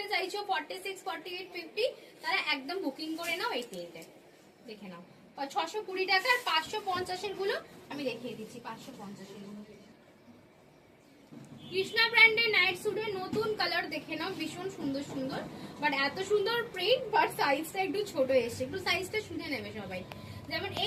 চাইছো 46, 48, 50 তারা একদম বুকিং করে নাও এই তিনটে। দেখে নাও 620 টাকা। আর 550 এর গুলো আমি দেখিয়ে দিচ্ছি। 550 এর গুলো কৃষ্ণা ব্র্যান্ডের নাইট স্যুটের নতুন কালার দেখে নাও, ভীষণ সুন্দর সুন্দর বাট এত সুন্দর প্রিন্ট বাট সাইজটা একটু ছোট এসছে। একটু সাইজটা শুনে নেবে সবাই। যেমন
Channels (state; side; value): identical; both; correlation 1.00